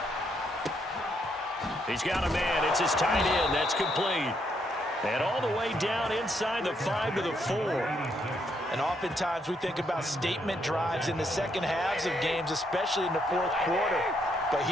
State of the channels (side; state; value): both; normal; correlation 0.75